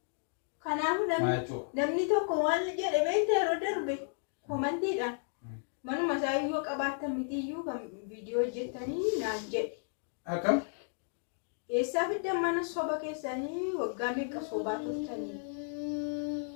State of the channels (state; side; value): silent; right; digital silence